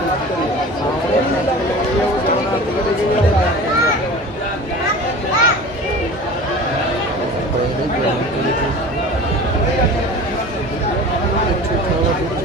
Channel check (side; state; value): both; normal; correlation 0.38